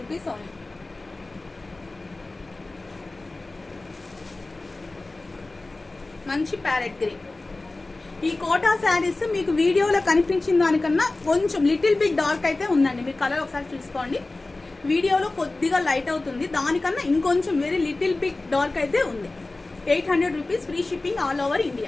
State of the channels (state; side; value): quieter; right; 3.1 dB